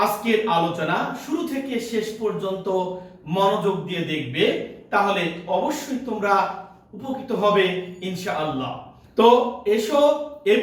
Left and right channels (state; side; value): identical; both; correlation 1.00